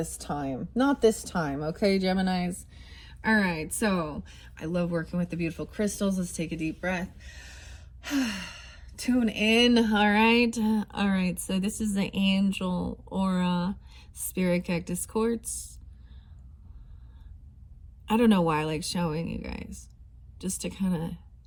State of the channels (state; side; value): identical; both; correlation 1.00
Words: time, okay, Geminis? All right, so I love working with the beautiful crystals. Let's take a deep breath. Tune in, all right. So this is the Angel Aura Spirit Cactus Quartz. I don't know why I like showing you guys, just to kind of